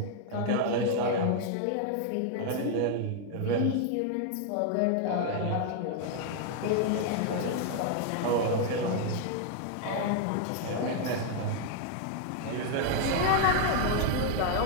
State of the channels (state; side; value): different; both; correlation 0.00